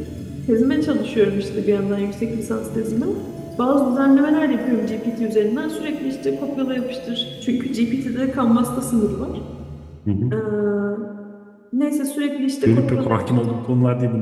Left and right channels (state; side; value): identical; both; correlation 1.00